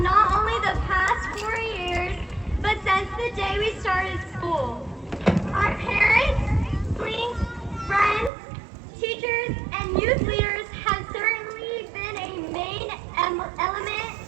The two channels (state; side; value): drops out; left; at 8.3 s